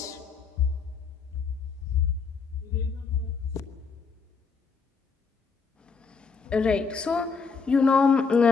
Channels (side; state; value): right; quieter; 5.1 dB